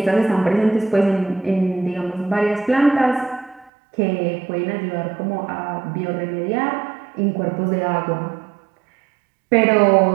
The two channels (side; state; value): left; drops out; at 3.7 s